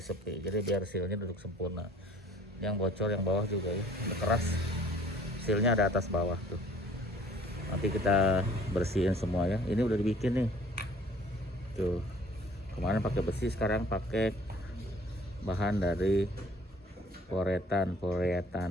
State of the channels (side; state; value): both; normal; correlation 0.54